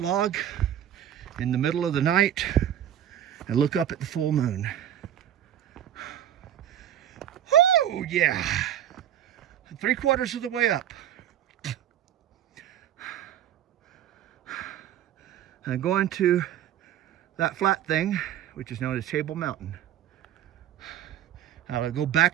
log in the middle of the night and look up at the full moon. Oh yeah, 3/4 of the way up. I'm going to that flat thing, which is known as Table Mountain. I'll go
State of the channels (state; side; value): quieter; left; 10.8 dB